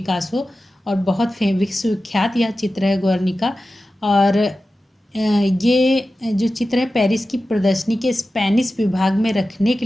और बहुत विश्वविख्यात यह चित्र है गुर्निका। और ये जो चित्र है पेरिस की प्रदर्शनी के स्पेनिश विभाग में रखने के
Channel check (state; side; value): normal; both; correlation 0.94